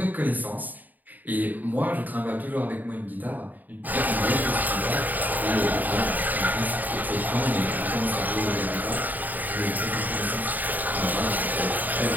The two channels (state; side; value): late; left; 0.085 ms